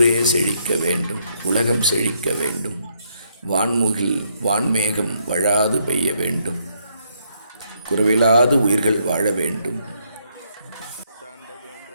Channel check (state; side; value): inverted; both; correlation -0.72